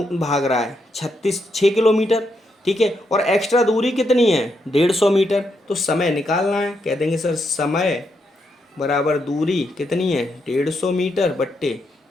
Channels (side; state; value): both; normal; correlation 0.80